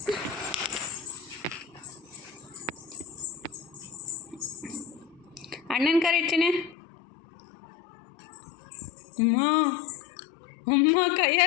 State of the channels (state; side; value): drops out; right; at 6.8 s